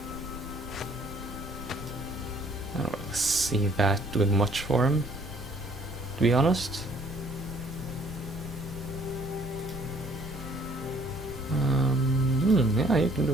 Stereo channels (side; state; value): both; normal; correlation 0.59